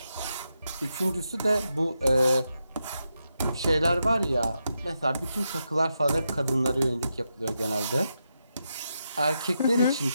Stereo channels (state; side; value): inverted; both; correlation -0.86